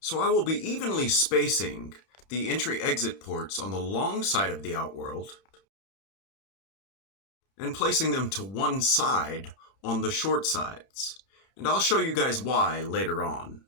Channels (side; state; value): right; late; 31 ms